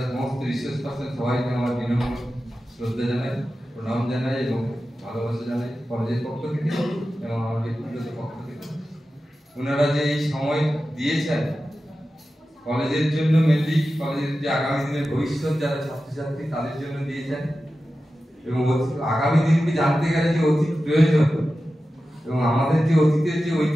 সমস্ত রিসোর্স পার্সন সবাইকে আমার বিনম্র শ্রদ্ধা জানাই, প্রণাম জানাই এবং ভালোবাসা জানাই কলেজের পক্ষ থেকে এবং আমার ব্যক্তিগত পক্ষ থেকে। ওনারা যে এই সময় দিয়েছেন কলেজের জন্য, মেনলি কলেজের যে আগামী দিনের ভবিষ্যৎ যারা ছাত্রছাত্রী তাদের জন্য দিয়েছেন এবং আগামী দিনকে জানতে গেলে যে অতীত প্রয়োজন এবং আমাদের যে অতীতের যে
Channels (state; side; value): normal; both; correlation 0.93